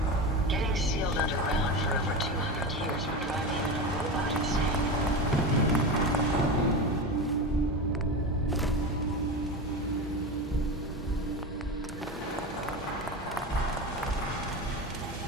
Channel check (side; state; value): both; normal; correlation 0.22